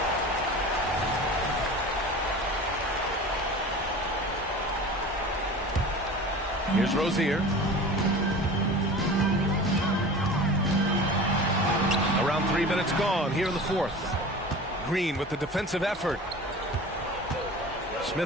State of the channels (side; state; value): both; normal; correlation 0.37